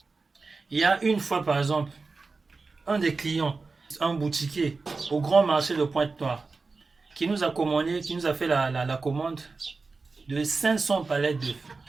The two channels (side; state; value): left; quieter; 4.1 dB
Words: Il y a une fois, par exemple, un des clients, un boutiquier au grand marché de Pointe-Noire, qui nous a commandé, qui nous a fait la commande de 500 palettes d'œufs.